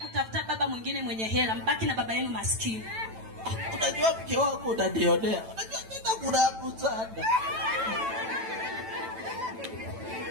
Utafuta baba mwingine mwenye hela, mbaki na baba yenu maskini. Unajua mke wako unadionea. Unajua nenda kurabu sana.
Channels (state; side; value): late; left; 9.0 ms